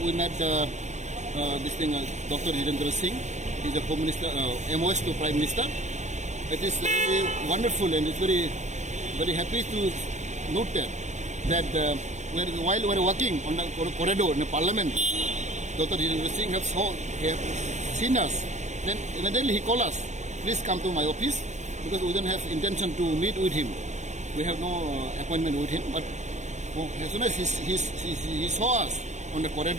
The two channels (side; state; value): left; late; 0.34 ms